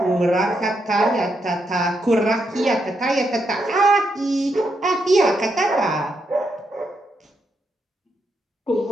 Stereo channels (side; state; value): both; normal; correlation 0.81